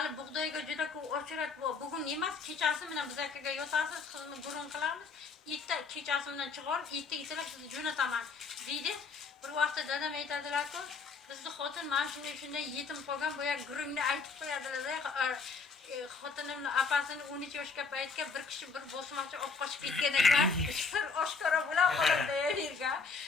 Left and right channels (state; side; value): quieter; right; 4.8 dB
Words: bug'doyga juda ko'p ochirat bor. Bugun emas, kechasi bilan biz akaga yotasiz, qizni burun qilamiz. Erta kechasi bilan chiqarib, erta kelsalar sizni jo'nataman deydi. Bir vaqtda dadam aytadilar-ku, bizni xotin mana shunday yetim qolgan, boya gurungni aytib qo'yadilar-da. xotinimni opasini 13 yoshga paytga bir kishi bir bosmachi olib qochib ketgan ekan. Sir oshkora bilan qoladi yerga.